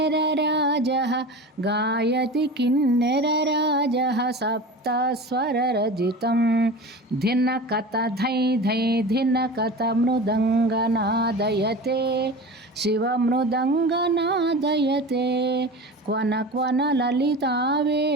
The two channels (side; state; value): both; normal; correlation 0.33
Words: सप्तस्वररजितं धिनकत धै धै धिनकत मृदङ्गनादयते शिवमृदङ्गनादयते क्वन क्वन